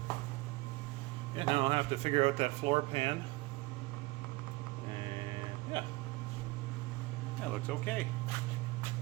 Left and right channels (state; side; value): quieter; left; 21.8 dB